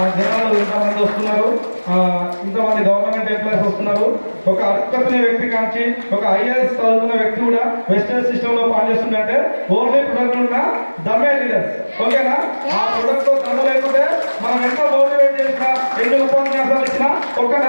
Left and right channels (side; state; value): both; inverted; correlation -1.00